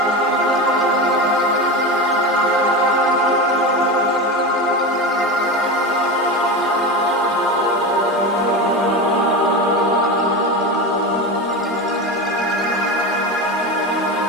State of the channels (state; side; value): normal; both; correlation 0.22